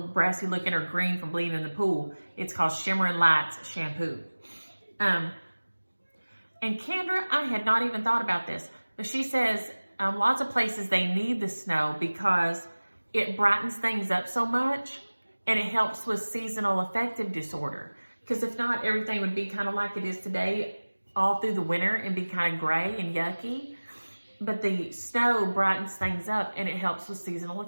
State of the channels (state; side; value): inverted; both; correlation -1.00